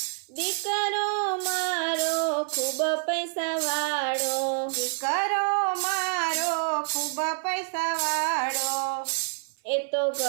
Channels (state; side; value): silent; left; 60 dB below the other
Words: દીકરો મારો ખૂબ પૈસા વાળો, દીકરો મારો ખૂબ પૈસા વાળો, એ તો